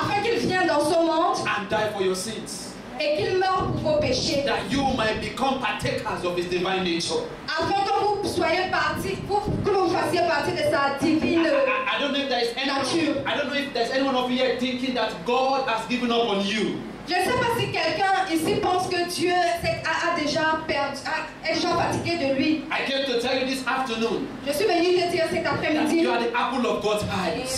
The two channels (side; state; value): both; identical; correlation 1.00